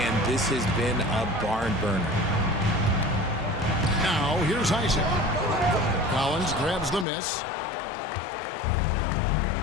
this has been a barn burner. Now, here's Isaac. Collins grabs the miss.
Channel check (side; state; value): right; drops out; at 7.1 s